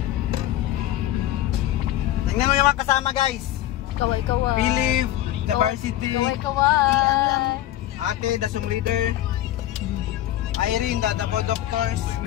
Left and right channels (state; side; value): quieter; right; 13.6 dB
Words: Tingnan mo yung mga kasama guys. Kaway-kaway. Philip, the varsity. Kaway-kaway. Ate, the Zoom leader. Irene, the co-doctors.